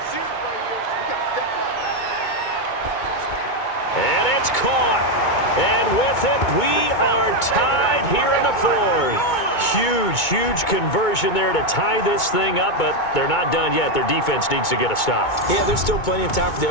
And it's caught. And with it, we are tied here in the 4th. Huge conversion there to tie this thing up, but they're not done yet. Their defense needs to get a stop. Yeah, there's still plenty of time for the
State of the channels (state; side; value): late; right; 2.2 ms